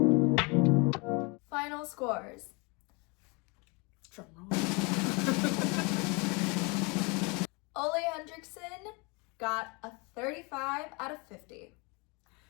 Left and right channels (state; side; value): quieter; right; 29.5 dB